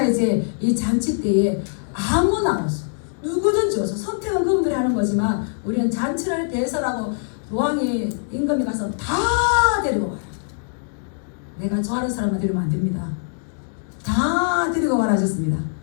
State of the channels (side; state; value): right; silent; digital silence